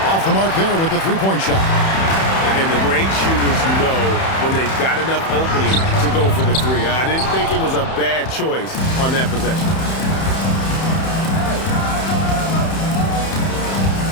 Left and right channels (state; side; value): late; right; 31 ms